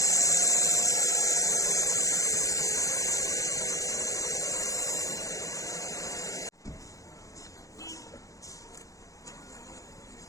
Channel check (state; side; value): late; right; 0.16 ms